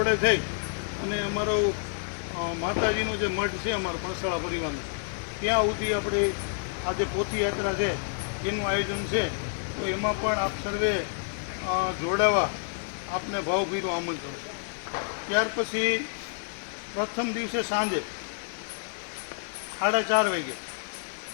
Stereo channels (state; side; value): silent; right; digital silence